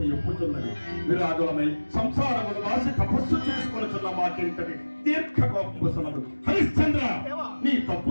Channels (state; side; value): inverted; both; correlation -1.00